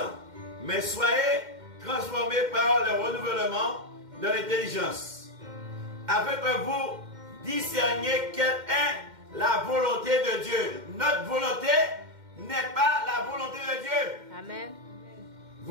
mais soyez transformés par le renouvellement de l'intelligence, afin que vous discerniez quelle est la volonté de Dieu. Notre volonté n'est pas la volonté de Dieu. Amen.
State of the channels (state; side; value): late; left; 2.1 ms